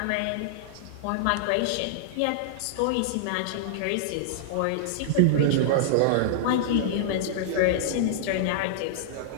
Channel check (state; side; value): different; both; correlation -0.01